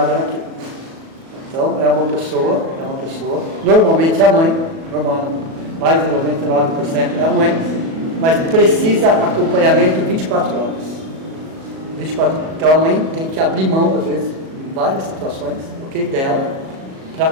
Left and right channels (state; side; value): late; left; 37 ms